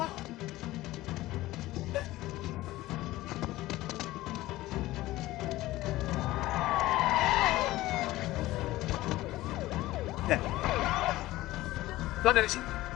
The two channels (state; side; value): quieter; right; 17.2 dB